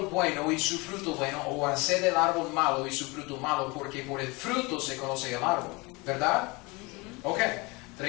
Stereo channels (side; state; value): right; quieter; 25.9 dB